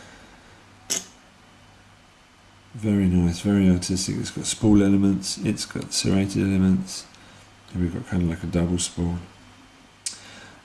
Very nice, very artistic. It's got spool elements, it's got serrated elements, and we've got kind of like a double spool.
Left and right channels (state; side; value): identical; both; correlation 1.00